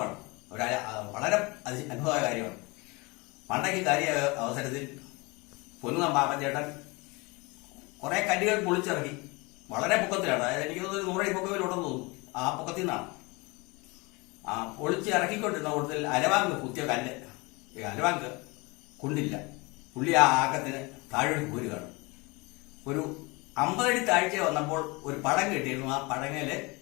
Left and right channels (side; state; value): right; quieter; 26.2 dB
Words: വളരെ അത്ഭുതമായ കാര്യമാണ്. മണ്ടയ്ക്ക് കയറിയ അവസരത്തിൽ പൊൻകുന്നം പാപ്പൻചേട്ടൻ കുറെ കല്ലുകൾ പൊളിച്ചിറക്കി. വളരെ പൊക്കത്തിലാണ്, അതായത് എനിക്ക് തോന്നുന്നു 100 പൊക്കത്തിലുണ്ടെന്ന് തോന്നുന്നു. ആ പൊക്കത്തിൽ നിന്നാണ് പൊളിച്ച് ഇറക്കിക്കൊണ്ടിരുന്ന കൂടുതൽ അരവാങ്ക് കുത്തിയ കല്ല്, അരവാങ്ക് കൊണ്ടില്ല. പുള്ളി ആ ആക്കത്തിന് താഴെ പോരുകയാണ്. ഒരു 50 അടി താഴ്ച വന്നപ്പോൾ ഒരു പടം കെട്ടിയിരുന്നു. ആ പടങ്ങല്